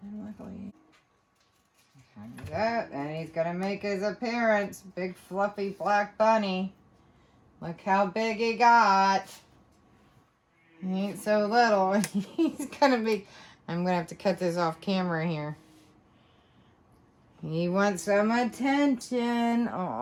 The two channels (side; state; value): both; identical; correlation 1.00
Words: And luckily, that, and he's gonna make his appearance. Big fluffy black bunny. Look how big he got. He ain't so little. He's gonna be. I'm gonna have to cut this off camera here. He wants some attention.